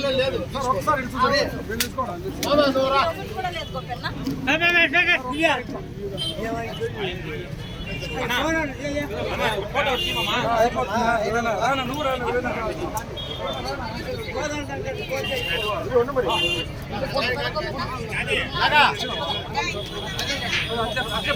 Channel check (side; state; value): both; identical; correlation 1.00